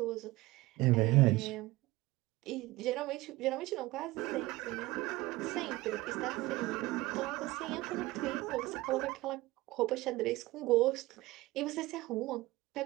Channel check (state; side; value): quieter; left; 19.7 dB